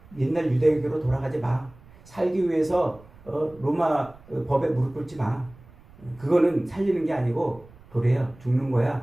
옛날 유대교로 돌아가지 마. 살기 위해서 로마 법에 무릎 꿇지 마. 그거는 살리는 게 아니고 도래야, 죽는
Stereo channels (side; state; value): right; noise; rumble, 24 dB below the sound